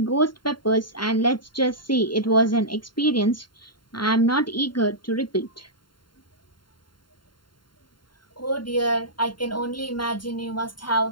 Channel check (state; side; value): late; right; 0.72 ms